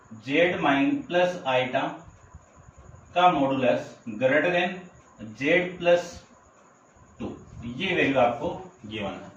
z माइन प्लस आइटा का modulus greater then z plus 2। ये वैल्यू आपको गिवन है,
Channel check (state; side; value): identical; both; correlation 1.00